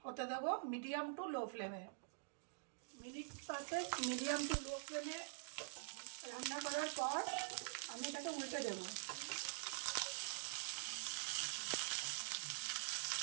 হতে দেবো, মিডিয়াম টু লো ফ্লেমে। মিনিট 5 মিডিয়াম টু লো ফ্লেমে রান্না করার পর আমি এটাকে উল্টে দেবো।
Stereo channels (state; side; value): silent; left; digital silence